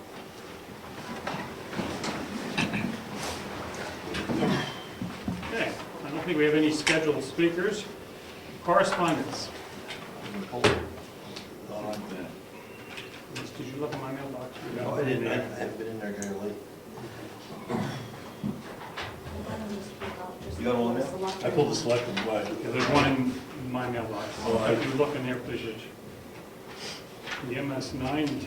Okay, I don't think we have any scheduled speakers. Correspondence. Did you look at my mailbox? No, I didn't. I haven't been in there very late. You got all of them? I pulled the selectmen, but Yeah, there's one in my mailbox. Oh, If you look in there, please, Rich. The MS 9 and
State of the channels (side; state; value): both; identical; correlation 1.00